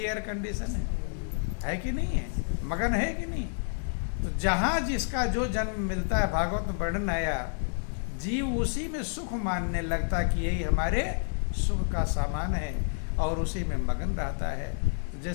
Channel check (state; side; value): silent; right; digital silence